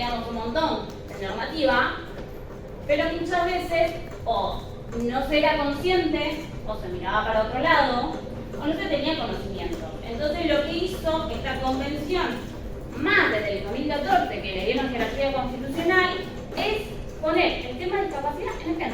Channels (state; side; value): identical; both; correlation 1.00